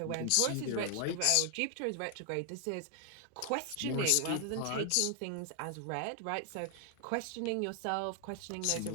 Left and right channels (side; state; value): both; different; correlation 0.00